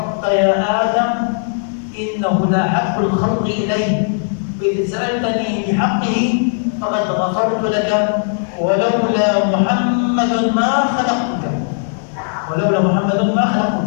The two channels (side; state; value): right; silent; 68 dB below the other